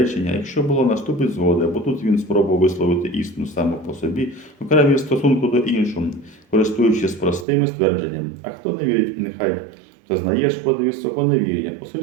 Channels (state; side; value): drops out; left; at 7.5 s